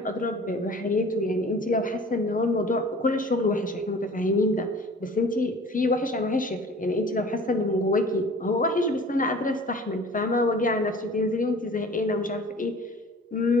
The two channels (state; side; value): normal; both; correlation 0.45